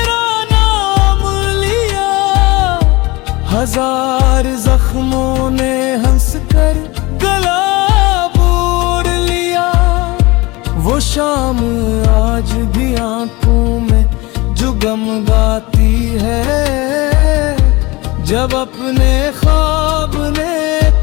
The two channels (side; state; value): right; quieter; 22.8 dB